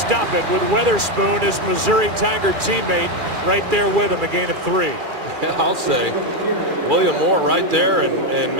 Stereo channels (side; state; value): left; late; 2.4 ms